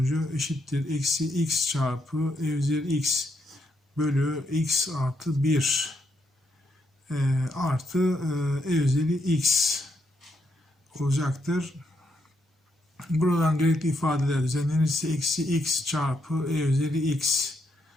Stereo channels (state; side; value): normal; both; correlation 0.77